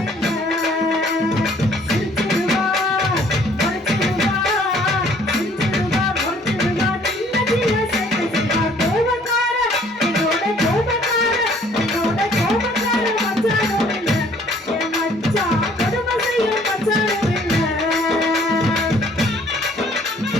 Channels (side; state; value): both; normal; correlation 0.58